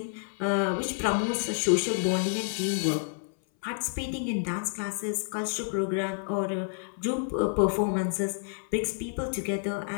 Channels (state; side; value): silent; right; 58 dB below the other